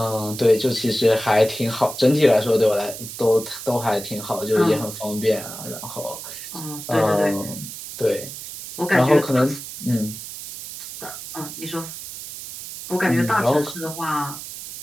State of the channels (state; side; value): noise; right; hiss, 11 dB below the sound